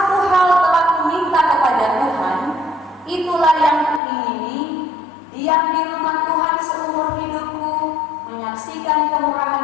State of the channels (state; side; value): drops out; right; at 4.0 s